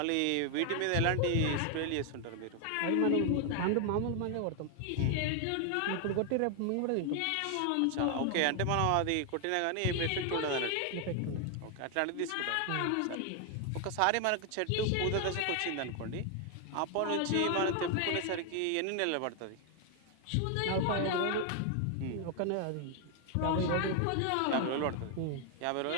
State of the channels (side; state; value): both; different; correlation 0.00